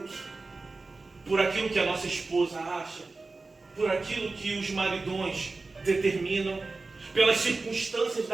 por aquilo que a nossa esposa acha, por aquilo que os maridões determinam, pelas circunstâncias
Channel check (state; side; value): quieter; left; 3.7 dB